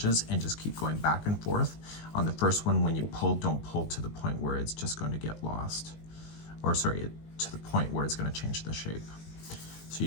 and just keep going back and forth. On the first one, when you pull, don't pull to the point where it's just going to get lost, or sorry, to the point where it's going to change the shape. So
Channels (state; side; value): late; right; 19 ms